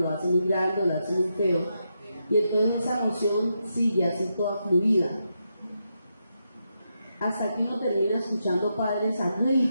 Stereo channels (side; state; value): both; inverted; correlation -0.84